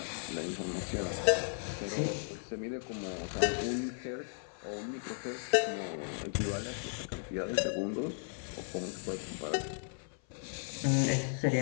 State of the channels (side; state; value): right; silent; 54 dB below the other